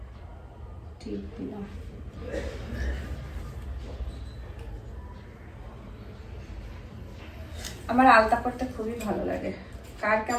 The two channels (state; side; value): identical; both; correlation 1.00